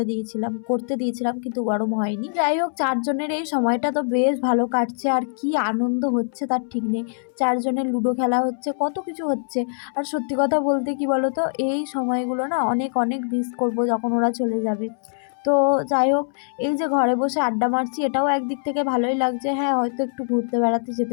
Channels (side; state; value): right; silent; 63 dB below the other